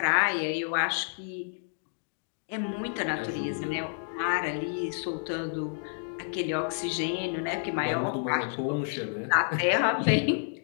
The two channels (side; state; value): right; silent; digital silence